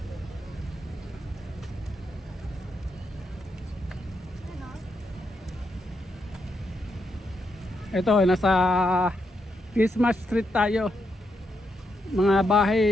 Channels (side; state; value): both; normal; correlation 0.81